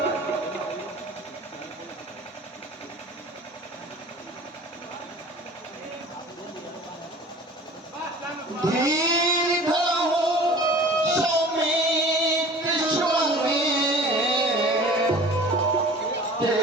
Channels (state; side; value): normal; both; correlation 0.44